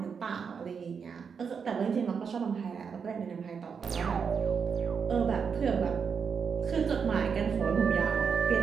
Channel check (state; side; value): quieter; left; 6.3 dB